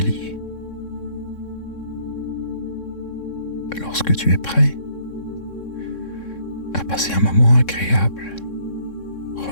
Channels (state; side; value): late; right; 3.6 ms